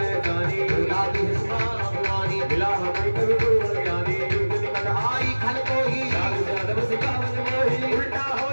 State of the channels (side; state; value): both; inverted; correlation -1.00